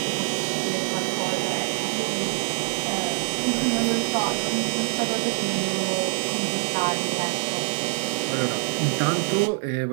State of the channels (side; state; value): left; silent; digital silence